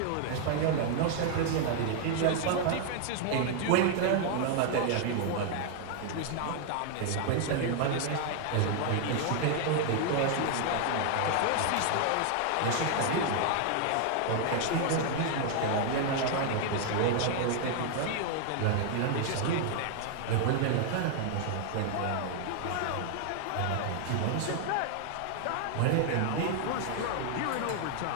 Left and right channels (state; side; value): different; both; correlation 0.00